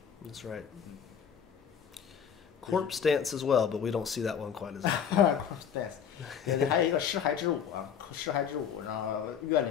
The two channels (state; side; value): quieter; right; 7.9 dB